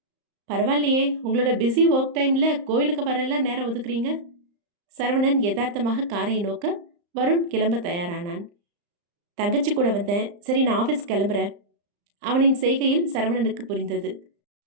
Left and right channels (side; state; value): left; late; 35 ms